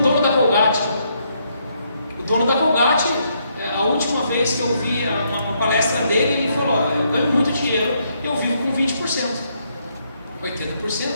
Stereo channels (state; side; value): inverted; both; correlation -0.74